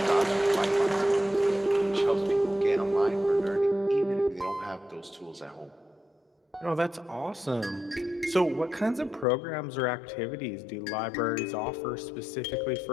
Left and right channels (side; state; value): right; drops out; at 9.2 s